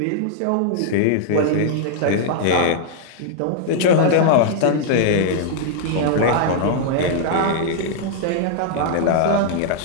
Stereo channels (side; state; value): both; different; correlation -0.01